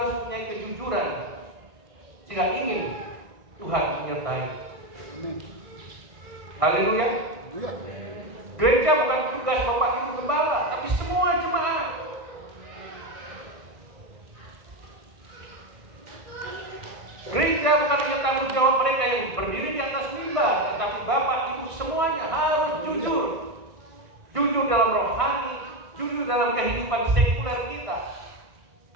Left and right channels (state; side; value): late; left; 1.6 ms